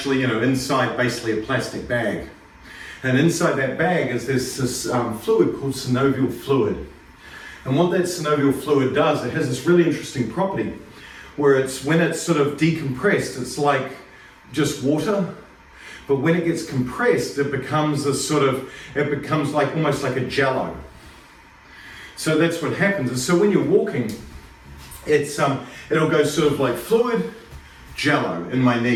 inside basically a plastic bag. And inside that bag is this fluid called synovial fluid. And what that synovial fluid does, it has this really interesting property where when it's sort of decompressed, it's like just water. But when it gets compressed, it becomes like almost like a jello. So that's what happens. And so when you're walking, it'll go sort of like fluid, jello in my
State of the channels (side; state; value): both; identical; correlation 1.00